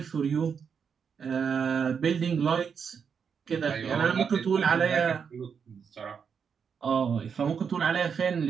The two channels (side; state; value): left; quieter; 6.6 dB